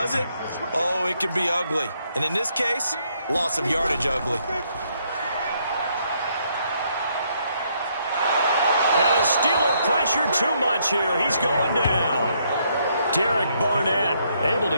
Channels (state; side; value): inverted; both; correlation -0.72